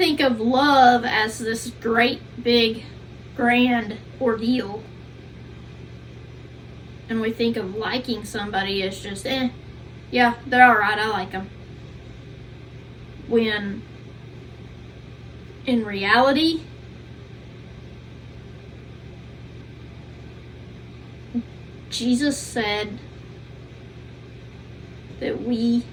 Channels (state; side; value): identical; both; correlation 1.00